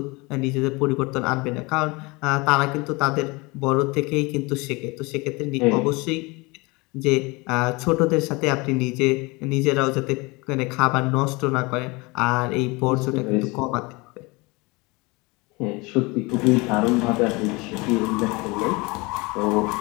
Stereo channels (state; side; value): quieter; right; 25.5 dB